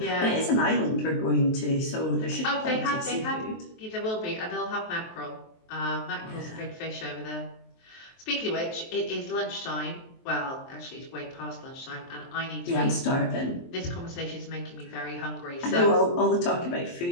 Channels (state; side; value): late; right; 23 ms